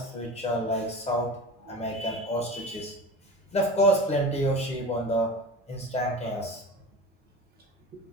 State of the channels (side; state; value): both; normal; correlation 0.33